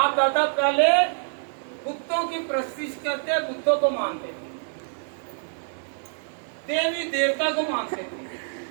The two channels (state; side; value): silent; left; 61 dB below the other